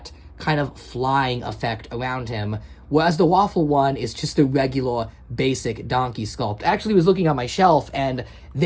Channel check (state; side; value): identical; both; correlation 1.00